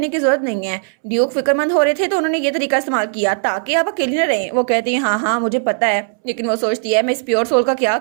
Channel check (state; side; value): silent; left; 68 dB below the other